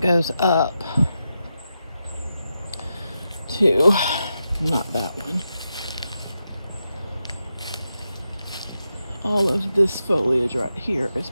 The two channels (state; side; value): inverted; both; correlation -0.88